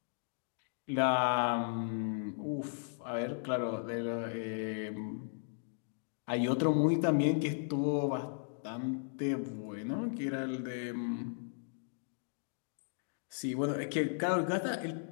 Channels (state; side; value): silent; right; digital silence